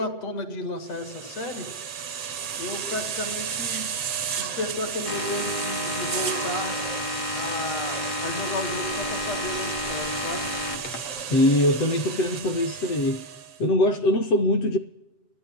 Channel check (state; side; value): late; right; 7.9 ms